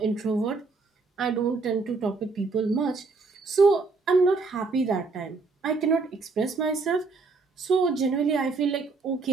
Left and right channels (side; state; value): left; quieter; 4.1 dB